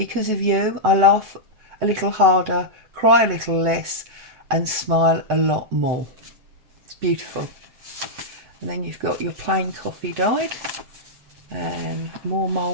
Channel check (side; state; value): left; late; 8.0 ms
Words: of you, I laugh a little harder, cry a little less, and smile a lot more. It's beautiful. And then you've got your plain coffee dyed and more